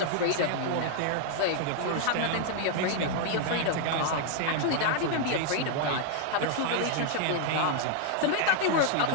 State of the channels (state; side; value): different; both; correlation 0.00